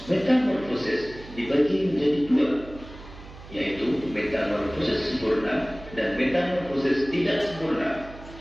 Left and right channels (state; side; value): noise; right; hum, 17 dB below the sound